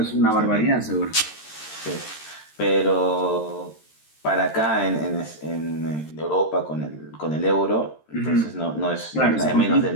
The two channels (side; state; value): right; late; 13 ms